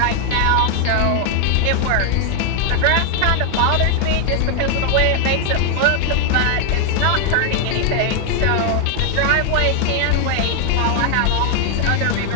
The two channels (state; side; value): different; both; correlation 0.00